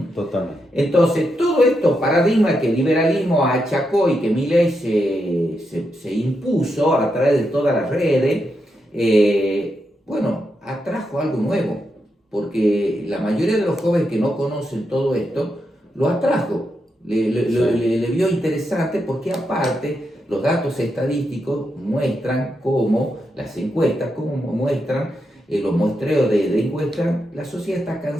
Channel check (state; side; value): normal; both; correlation 0.84